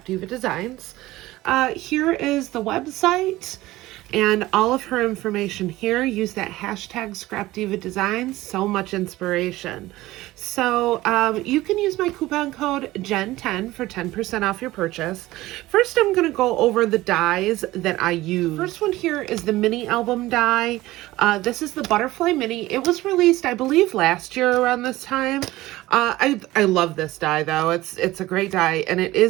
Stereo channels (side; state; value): left; quieter; 17.5 dB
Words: Designs. Here is the website and all of her information here. Use that hashtag Scrapdiva Designs, so much inspiration. So you can use my coupon code JEN10 for 10% off your purchase. First, I'm gonna go over the dies that I use. First one here is the mini album die. This is the Butterfly Mini. It was released, I believe, last year around this time. I love this die though. It's a great die and it